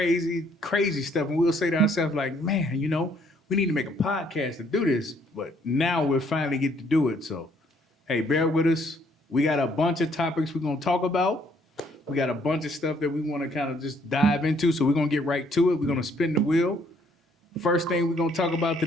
stuff, and we'll say to ourselves, like, man, we need to make a podcast to do this, but now we're finally getting to do it. So, hey, bear with us. We got a bunch of topics we're going to talk about. We got a bunch of stuff that we want to kind of just dive into, so we're going to get right to it. We're going to spin the wheel. First thing we're going to talk about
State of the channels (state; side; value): normal; both; correlation 0.66